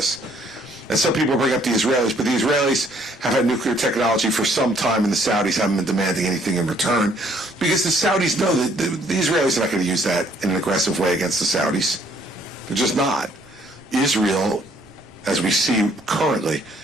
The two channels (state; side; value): noise; right; rumble, 30 dB below the sound